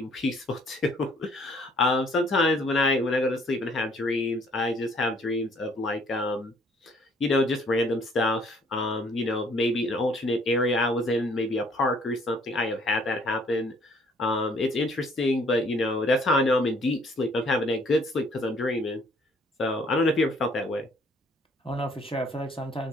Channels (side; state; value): both; normal; correlation 0.61